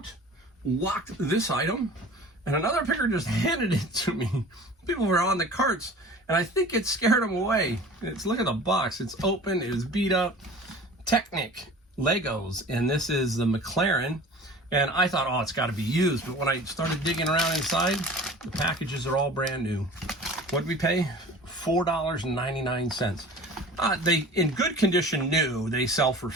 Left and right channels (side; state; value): both; normal; correlation 0.42